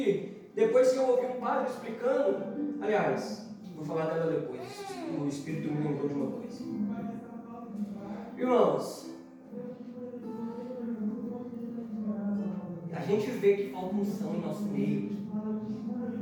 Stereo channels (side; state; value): both; identical; correlation 1.00